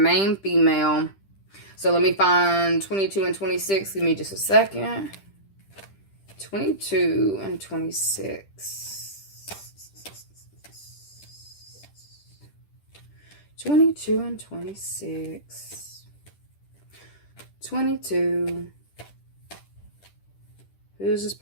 female. So let me find 22 and 26. Give me just a second. 22 and 26. 22 and 26. 22. Who is this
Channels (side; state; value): right; late; 10 ms